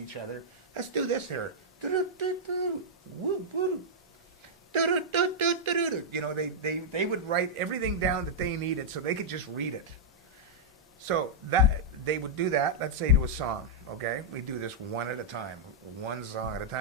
other. Let's do this here. You know, they would write everything down that they needed so they could just read it. So that they would do that, let's say to a song, okay? We do this one at a time, one song at a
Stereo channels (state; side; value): normal; both; correlation -0.09